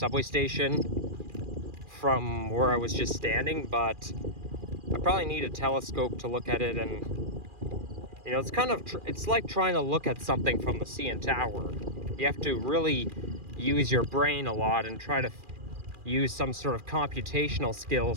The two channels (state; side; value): late; left; 2.4 ms